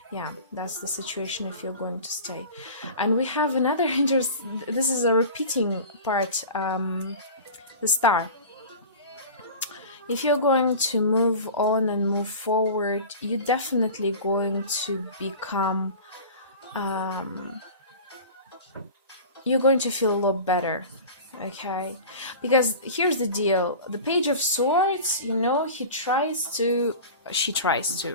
yeah, that's the situation if you're going to stay. And we have another this is a repeating part, the Star. If you're going to move on and move forward, you're definitely going to become you're going to feel a lot better. Okay, because here's the deal: the Page of Swords, you know, she tries to,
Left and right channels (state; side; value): inverted; both; correlation -0.36